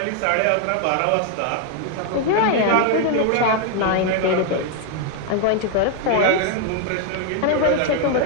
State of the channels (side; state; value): both; different; correlation 0.00